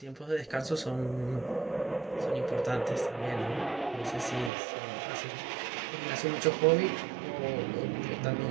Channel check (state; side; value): drops out; left; at 4.5 s